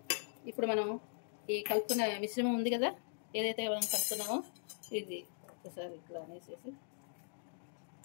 ఇప్పుడు మనం ఈ కలుపుకున్న మిశ్రమం ఉంది కదా, ఏదైతే మనం కలుపుకున్నామో ఇది ఒకసారి ఇట్లా అనేసేసి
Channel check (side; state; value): right; silent; digital silence